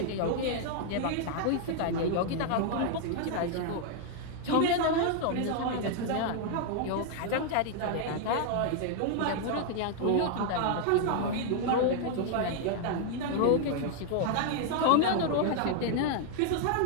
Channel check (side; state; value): both; different; correlation 0.00